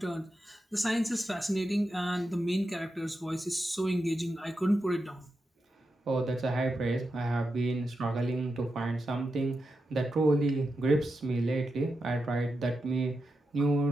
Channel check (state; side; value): normal; both; correlation 0.88